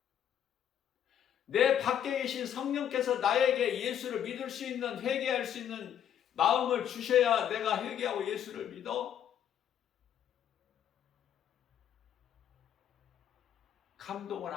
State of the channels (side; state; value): right; quieter; 9.7 dB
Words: 내 밖에 계신 성령께서 나에게 예수를 믿을 수 있는, 회개할 수 있는 마음을 주셔야 내가 회개하고 예수를 믿어. 감동을